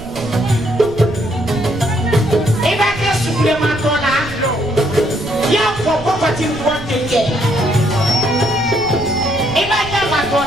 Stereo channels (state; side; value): noise; right; rumble, 14 dB below the sound